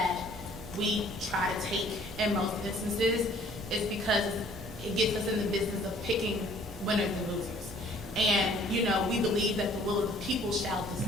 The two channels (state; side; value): normal; both; correlation 0.56